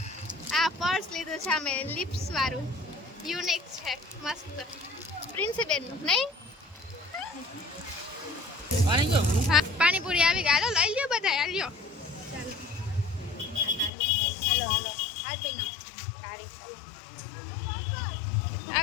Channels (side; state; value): right; drops out; at 13.9 s